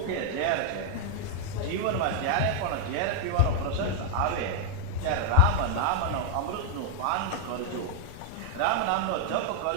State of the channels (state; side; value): different; both; correlation 0.00